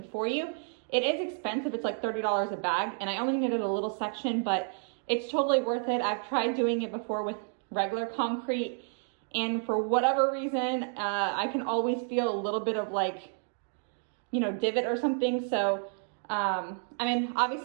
for you. It is expensive. It's like $30 a bag, and I only needed a little section, but it's totally worth it. I've tried doing it before with regular concrete, and for whatever reason, I can always feel a little bit of like, you know, divot or something. So I mean,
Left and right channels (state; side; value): silent; left; 57 dB below the other